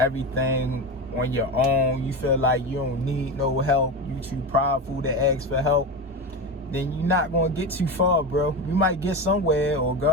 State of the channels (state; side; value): normal; both; correlation 0.20